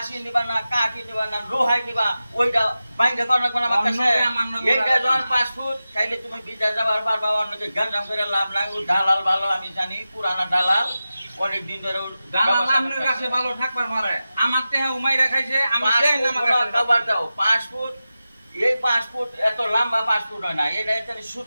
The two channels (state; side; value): inverted; both; correlation -0.94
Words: নিবা না কাঠি নিবা না লোহাই নিবা ওইটা বাইরে কোন কোন আমার কাছে এইটা যখন পাসপোর্ট তাইলে তুমি বিদেশ যাবার পারবা অন্যকে গাঞ্জাম করে লাভ নাই ও দালাল ভালো আমি জানি পুরানা দালাল অনেক দিন ধরে দালাল আপনার কাছে ভালো থাকবার পারে আমার তেহে উমাই রাখাইছে আমি দেই না আমার কাছে খাবার দাও পাসপোর্ট এই পাসপোর্ট এত লম্বা পাসপোর্ট হয় না এটা এখানে